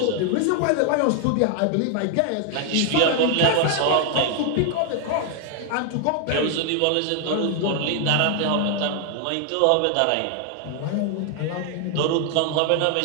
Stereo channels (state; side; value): different; both; correlation 0.00